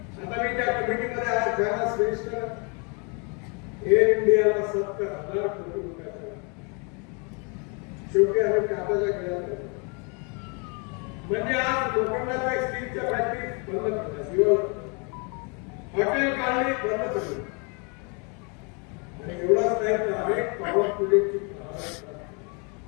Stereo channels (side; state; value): right; quieter; 34.4 dB